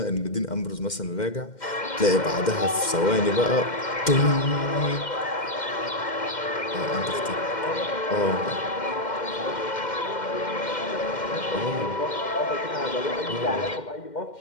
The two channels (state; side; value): late; right; 2.1 ms